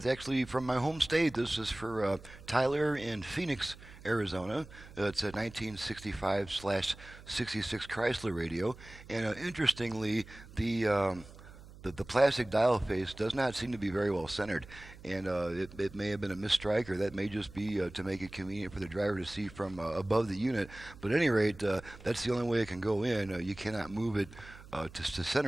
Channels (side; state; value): right; noise; hum, 19 dB below the sound